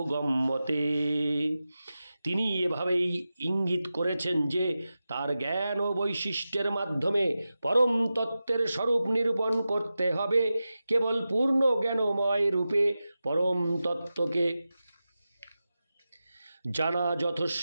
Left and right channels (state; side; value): inverted; both; correlation -0.93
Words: তিনি এভাবেই ইঙ্গিত করেছেন যে তার জ্ঞান ও বৈশিষ্ট্যের মাধ্যমে পরম তত্ত্বের স্বরূপ নিরূপণ করতে হবে। কেবল পূর্ণ জ্ঞানময় রূপে পরম তত্ত্বকে জানা